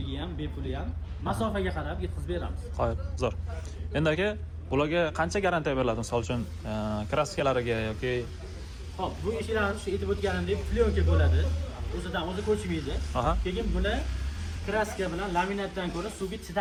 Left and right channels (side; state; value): both; identical; correlation 1.00